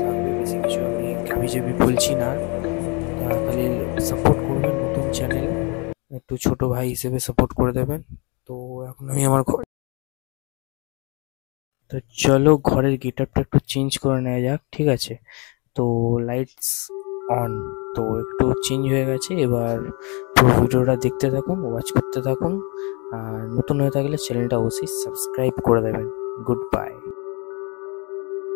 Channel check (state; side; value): quieter; right; 31.5 dB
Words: থাকবে, বেশি কিছু আমি হাবিজাবি বলছি না আর। খালি সাপোর্ট করবেন, নতুন চ্যানেল, একটু ছোট ভাই হিসেবে সাপোর্ট করে দেবেন। তো এখন আমি আমার ঘর, তো চলো ঘরের গেটআপটা একটু চেঞ্জ করে নেওয়া যাক। ঠিক আছে, তো লাইটস অন। তো একটু চেঞ্জ হয়ে গেছে। এবার পুরো ভিডিওটা দেখতে থাকুন, ওয়াচ করতে থাকুন। আর নতুন হয়ে থাকলে চ্যানেলটা অবশ্যই সাবস্ক্রাইব করে দেবেন। Good bye.